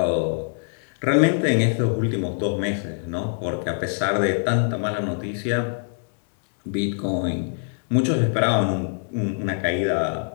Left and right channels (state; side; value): silent; right; digital silence